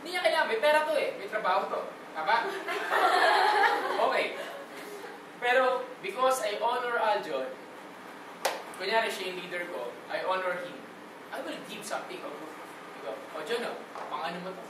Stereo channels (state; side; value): identical; both; correlation 1.00